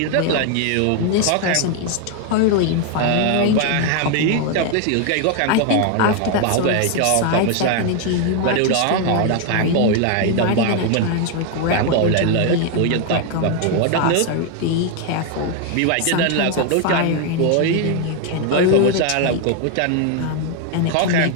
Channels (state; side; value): different; both; correlation 0.01